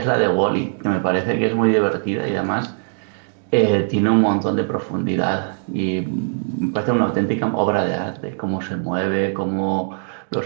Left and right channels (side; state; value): left; silent; digital silence